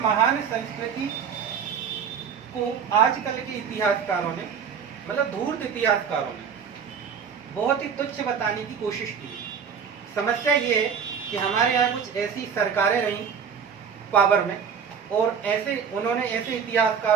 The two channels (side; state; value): left; quieter; 7.0 dB